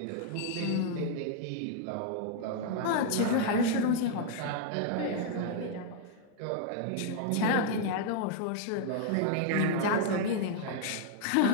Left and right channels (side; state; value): both; different; correlation 0.00